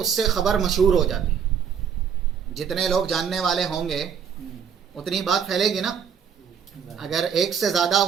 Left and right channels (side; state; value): left; quieter; 7.5 dB